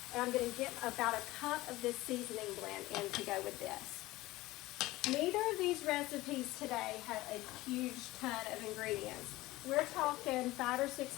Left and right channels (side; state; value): right; quieter; 18.6 dB